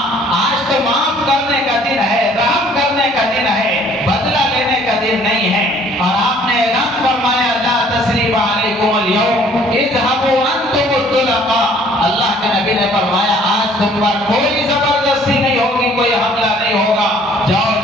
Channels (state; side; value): normal; both; correlation 0.57